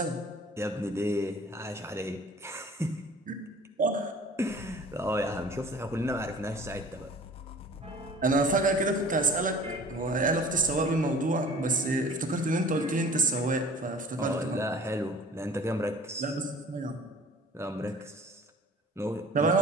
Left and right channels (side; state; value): both; normal; correlation 0.46